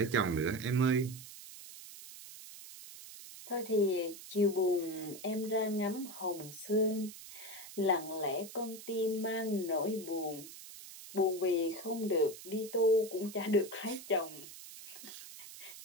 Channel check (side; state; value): right; noise; hiss, 14 dB below the sound